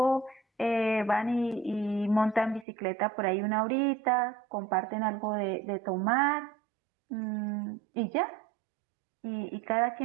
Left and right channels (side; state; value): left; drops out; at 2.7 s